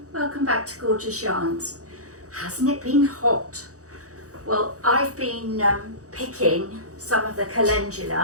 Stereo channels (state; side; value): late; left; 0.66 ms